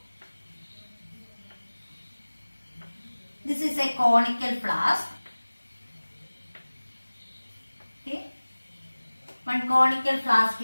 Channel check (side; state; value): both; inverted; correlation -1.00